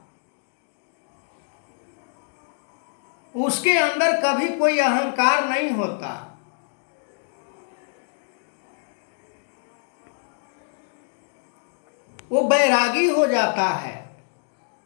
उसके अंदर कभी कोई अहंकार नहीं होता। वो बैरागी हो जाता है,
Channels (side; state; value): right; silent; 61 dB below the other